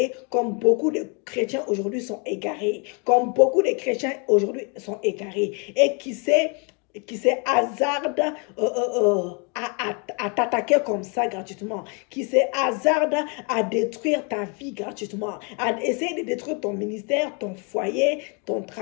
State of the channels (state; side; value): quieter; right; 35.0 dB